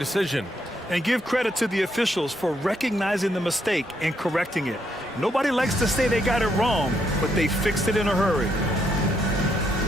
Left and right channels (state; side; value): normal; both; correlation 0.75